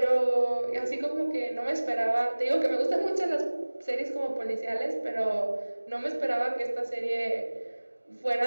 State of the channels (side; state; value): both; inverted; correlation -1.00